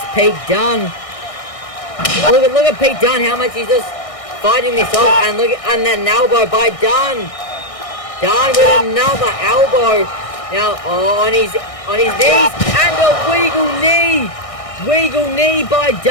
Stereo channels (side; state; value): right; late; 1.6 ms